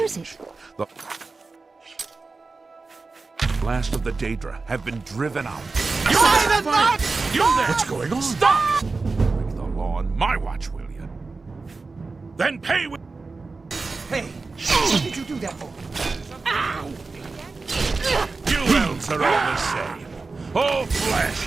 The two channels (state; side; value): quieter; left; 4.0 dB